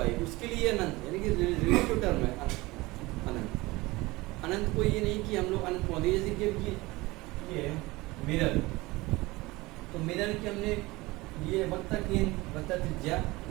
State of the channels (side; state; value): left; quieter; 21.4 dB